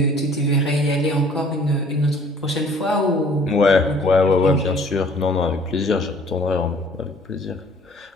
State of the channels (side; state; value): both; normal; correlation 0.55